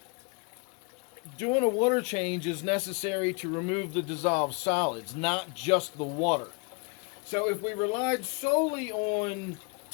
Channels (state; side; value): quieter; right; 32.3 dB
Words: doing a water change is necessary to remove the dissolved solids, not just the water. So if we relied solely on